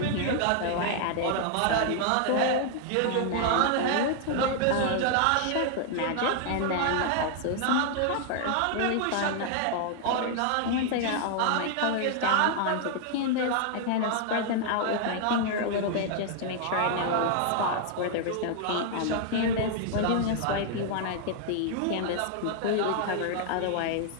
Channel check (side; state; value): both; different; correlation 0.00